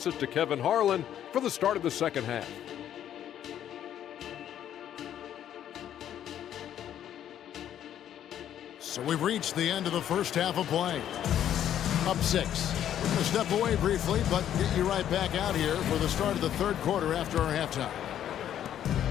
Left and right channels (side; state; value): right; quieter; 10.6 dB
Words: it to Kevin Harlan for the start of the second half. So we've reached the end of the first half of play. Up 6. We're going to step away briefly, but get you right back out here for the start of the third quarter after our halftime.